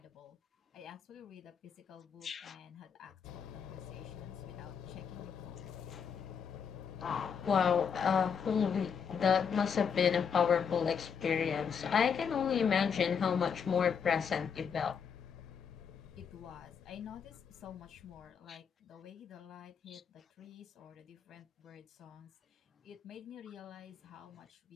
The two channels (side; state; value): right; quieter; 6.8 dB